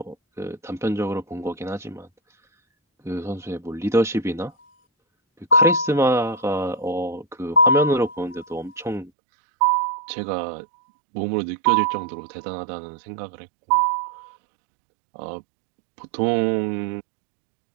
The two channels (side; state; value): left; drops out; at 9.1 s